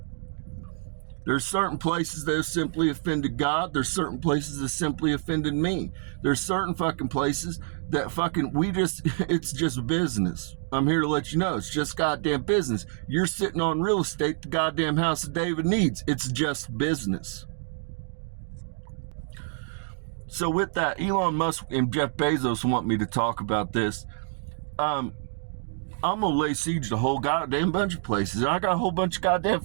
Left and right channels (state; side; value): silent; left; digital silence